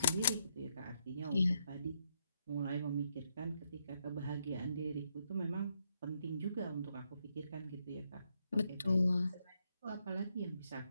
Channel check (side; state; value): both; inverted; correlation -0.77